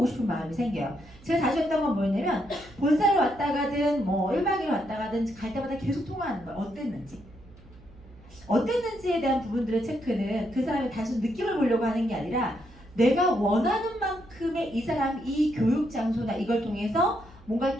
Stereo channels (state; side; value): noise; right; hum, 23 dB below the sound